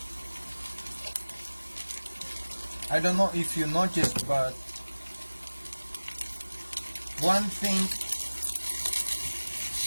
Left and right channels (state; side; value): inverted; both; correlation -1.00